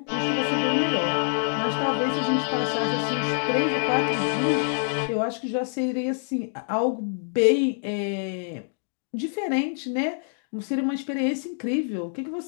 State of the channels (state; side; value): silent; right; digital silence